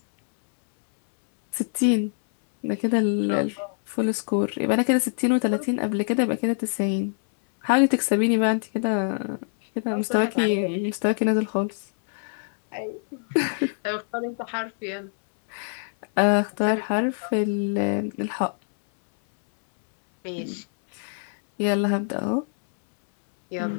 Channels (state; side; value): silent; right; 61 dB below the other